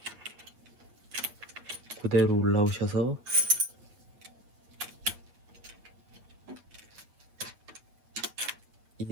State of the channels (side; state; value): left; late; 8.7 ms